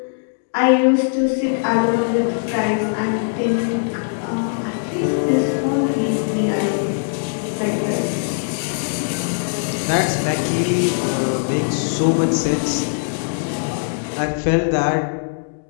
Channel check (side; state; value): right; silent; digital silence